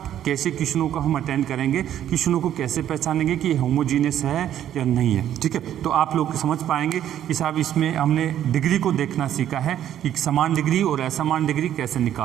कैसे क्वेश्चनों को हम अटेंड करेंगे, क्वेश्चनों को कैसे पहचानेंगे कि होमोजीनियस है या नहीं है। ठीक है, तो आप लोग समझ पाएंगे कि साहब इसमें हमने डिग्री को देखना सीखा है कि समान डिग्री और असमान डिग्री कैसे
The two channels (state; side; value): quieter; left; 11.0 dB